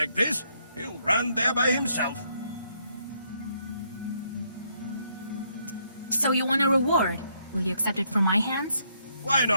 this, he'll run there by himself. So you want a reward? Will you accept it from my hands? Why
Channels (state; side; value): inverted; both; correlation -0.73